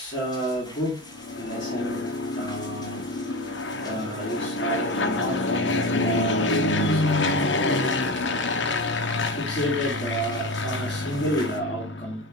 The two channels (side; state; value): both; normal; correlation 0.25